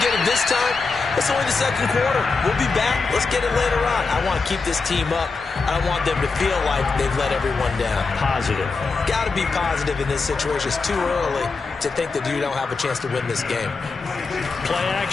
get it this time. It's only the second quarter. We'll be back. Let's get it later on. I want to keep this team up. I don't want them to feel like they've let everyone down. Positive. Got to be positive in this situation. It's too early to think that you don't have a chance to win this game. Play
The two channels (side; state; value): right; quieter; 4.3 dB